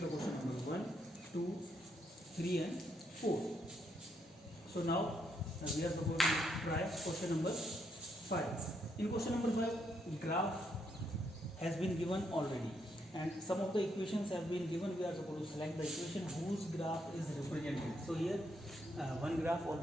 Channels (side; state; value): both; normal; correlation 0.76